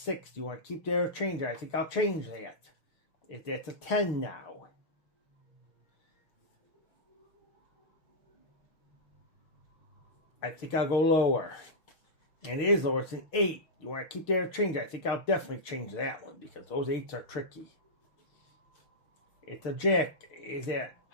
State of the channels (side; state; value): right; late; 6.6 ms